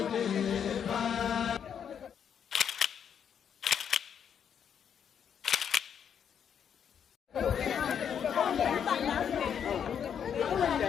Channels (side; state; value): right; quieter; 8.1 dB